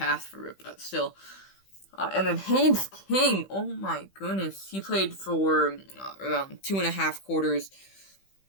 for it, but still. And then Haynes King, oh my goodness. He played for around 2.5 quarters.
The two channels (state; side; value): late; right; 15 ms